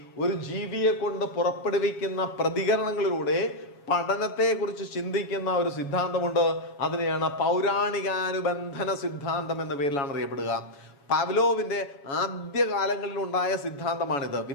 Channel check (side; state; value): right; late; 7.2 ms